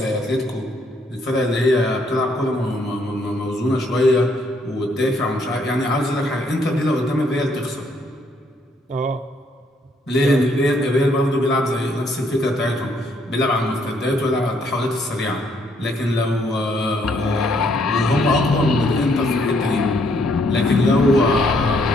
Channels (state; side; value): normal; both; correlation 0.70